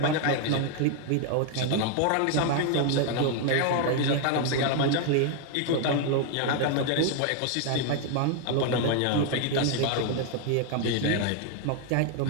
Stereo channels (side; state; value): both; different; correlation 0.00